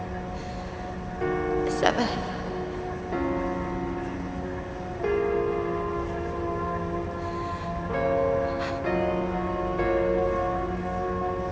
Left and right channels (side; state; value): both; identical; correlation 1.00